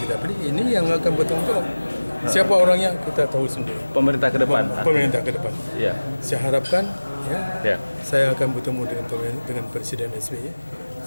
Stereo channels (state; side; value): inverted; both; correlation -1.00